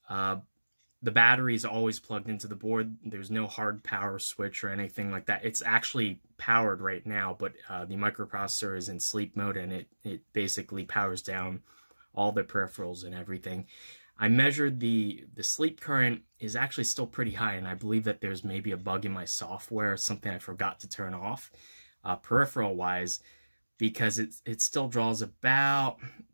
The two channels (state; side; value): inverted; both; correlation -1.00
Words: the battery is always plugged into the board. There's no hard power switch or anything like that. It's actually powered right now, but the microprocessor is in sleep mode, and it basically powers down all the peripherals and everything. I measured the sleep current is actually still pretty high, and I believe that there's maybe a bug in my software, something I forgot to turn off peripheral-wise, because it still draws about